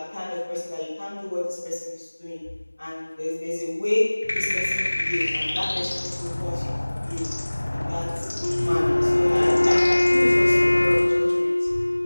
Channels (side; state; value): both; inverted; correlation -1.00